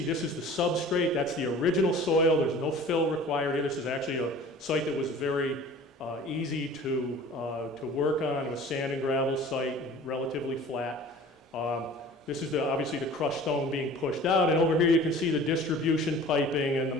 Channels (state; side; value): normal; both; correlation 0.44